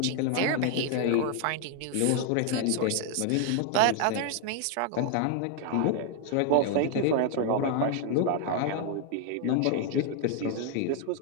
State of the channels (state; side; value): different; both; correlation 0.00